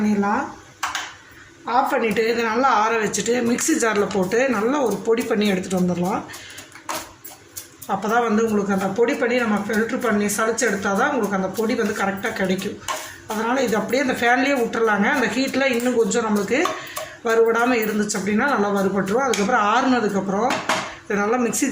ஆஃப் பண்ணிவிட்டு இதை நல்லா ஆற வச்சுட்டு மிக்ஸி ஜாரில் போட்டு நல்லா ஒரு பொடி பண்ணி எடுத்துகிட்டு வந்துடலாம். அப்போ தான் வந்து உங்களுக்கு அந்த பொடி பண்ணி நம்ம ஃபில்ட்ரு பண்ணி சளிச்சு எடுத்தால் தான் உங்களுக்கு அந்த பொடி வந்து கரெக்டாக கிடைக்கும். அதனால் இது அப்படியே அந்த ஃபேன்லேயே விட்டுறலாங்க. அந்த ஹீட்டில் இன்னும் கொஞ்சம் நம்மளுக்கு வறுபடாமல் இருந்துச்சு அப்படின்னா நல்லா வறுபட்டுரும். அதுக்கப்புறம் ஆறுனதுக்கப்புறம் இதை நல்லா மிக்ஸி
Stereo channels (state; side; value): identical; both; correlation 1.00